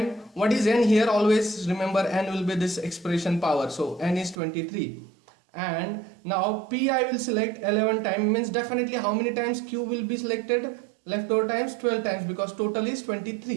What is n here? Always remember n will be this expression power, so n is 23, and now p I will select 11 times, means definitely how many times q will be selected, leftover times 12 times, because total is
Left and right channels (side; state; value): left; drops out; at 4.4 s